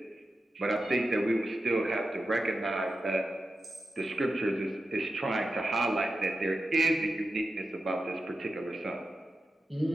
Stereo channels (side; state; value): both; normal; correlation 0.91